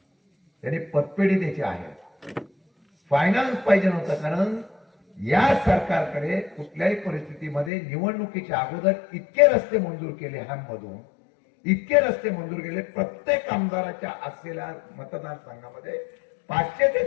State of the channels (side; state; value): right; drops out; at 7.7 s